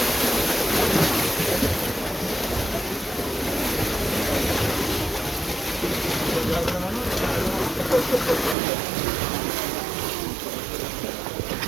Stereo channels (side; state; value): left; drops out; at 8.6 s